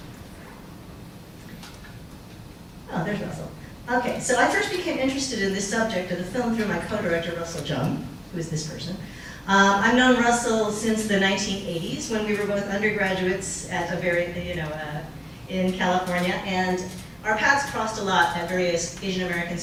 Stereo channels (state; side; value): identical; both; correlation 1.00